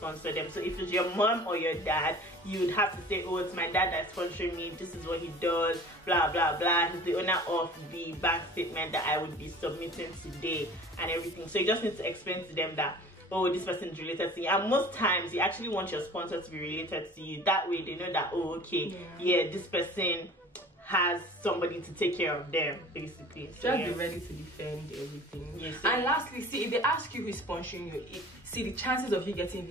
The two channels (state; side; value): normal; both; correlation 0.44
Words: them. So if it's your mom or your dad, you would have to say, oh, it's my dad that's sponsoring me, this is what he does, blah blah blah, he's the owner of the bank statement that I would be submitting today and everything. So you just need to explain to them that, oh, this person is related to you. And most times you actually want your sponsor to be related to you. That way they know that, oh, okay, yeah, this person has somebody to take care of them, basically. So just be ready to defend everything. Yes. And lastly, see, if they ask you who is sponsoring you, see, the chances of you getting